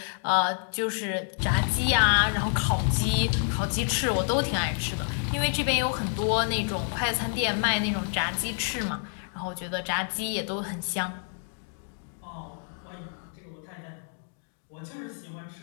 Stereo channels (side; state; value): right; silent; 58 dB below the other